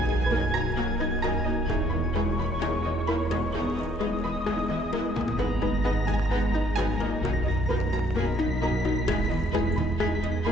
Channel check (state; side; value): normal; both; correlation 0.65